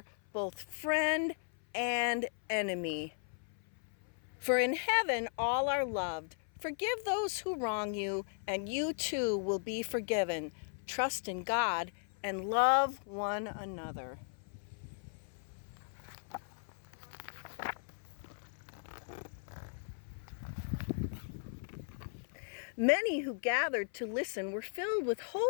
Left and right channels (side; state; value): right; silent; 53 dB below the other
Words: both friend and enemy. For in heaven all are loved. Forgive those who wrong you, and you too will be forgiven. Trust in God and love one another. Many who gathered to listen were filled with